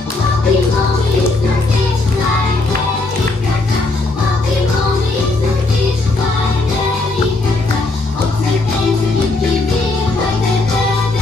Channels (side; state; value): right; quieter; 3.3 dB